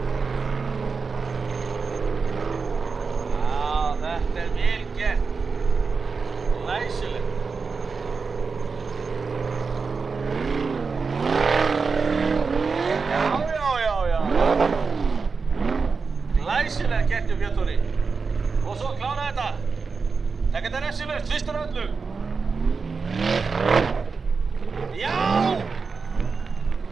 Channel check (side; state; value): left; quieter; 4.8 dB